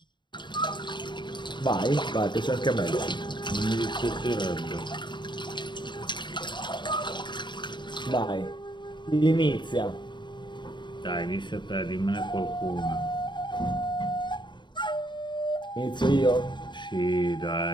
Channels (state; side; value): late; right; 0.22 ms